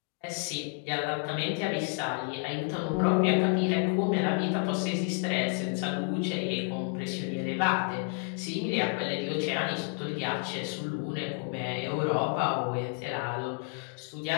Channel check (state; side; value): quieter; right; 39.1 dB